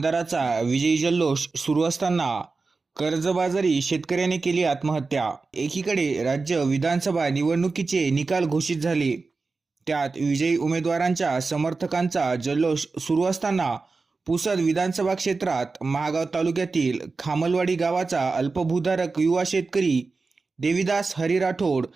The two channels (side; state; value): left; quieter; 4.0 dB